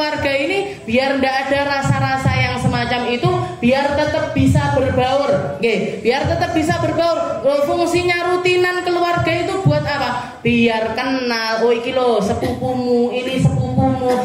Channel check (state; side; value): identical; both; correlation 1.00